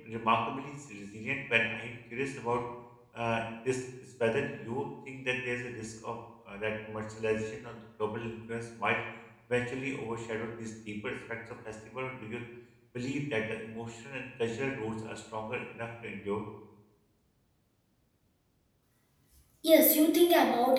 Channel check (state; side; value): identical; both; correlation 1.00